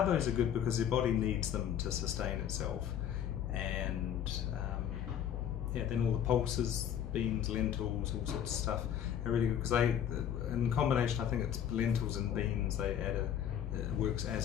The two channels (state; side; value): quieter; right; 9.6 dB